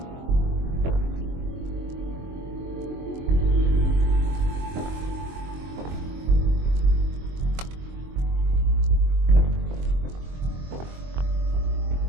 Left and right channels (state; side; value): late; left; 23 ms